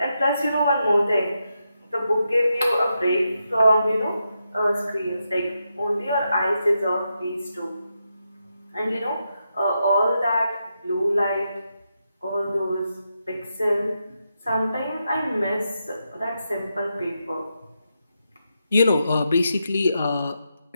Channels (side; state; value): both; inverted; correlation -0.85